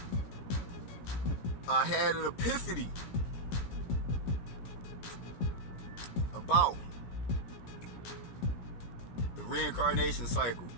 I had an epiphany about the reincarnation cycle,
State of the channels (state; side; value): late; right; 16 ms